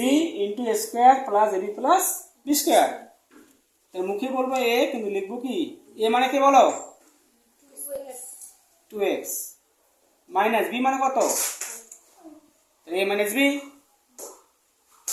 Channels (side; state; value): both; identical; correlation 1.00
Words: into a square plus ab plus b square তাহলে মুখে বলবো a কিন্তু লিখবো কি a মানে কি বলো 2x মাইনাস b মানে কত a minus b